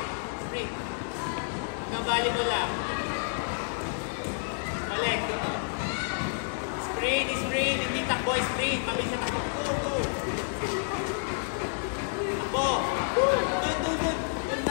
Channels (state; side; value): silent; right; 58 dB below the other